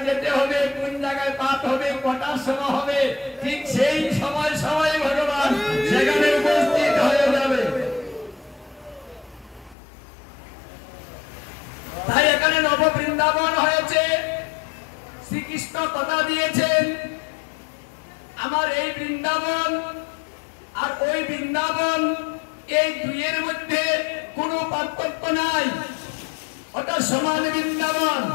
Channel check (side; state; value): right; drops out; at 9.8 s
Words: যেতে হবে, কোন জায়গায় পাঠ হবে, কটার সময় হবে, ঠিক সেই সময় সময় ভগবান সেখানে উপস্থিত হয়ে যাবে। তাই এখানে নব বৃন্দাবন হয়েছে। শ্রীকৃষ্ণ কথা দিয়েছেন, আমার এই বৃন্দাবন আর ওই বৃন্দাবন, এই দুইয়ের মধ্যে কোনো পার্থক্য নাই, ওটা সমান বৃন্দাবন।